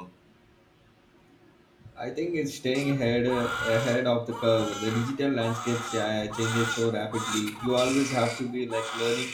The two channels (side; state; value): both; identical; correlation 1.00